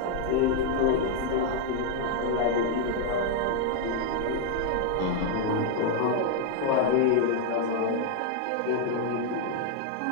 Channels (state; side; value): different; both; correlation 0.00